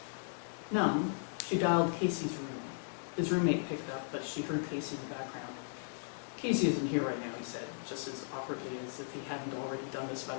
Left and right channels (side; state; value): right; silent; digital silence